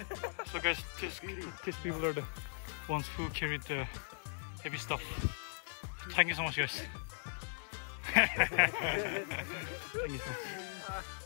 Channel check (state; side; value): silent; right; digital silence